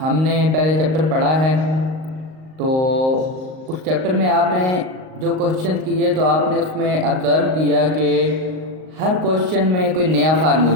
نے پہلے چیپٹر پڑھا ہے، تو اس چیپٹر میں آپ نے جو کوشچن کیے تو آپ نے اس میں آبزرو کیا کہ ہر کوشچن میں کوئی نیا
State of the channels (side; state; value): left; late; 38 ms